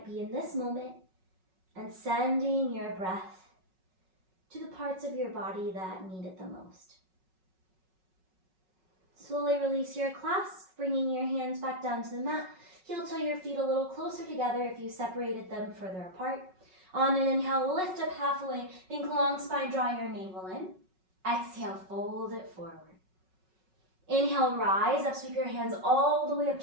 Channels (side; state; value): left; late; 5.4 ms